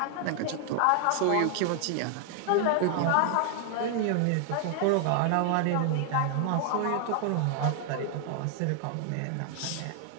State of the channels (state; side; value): different; both; correlation 0.00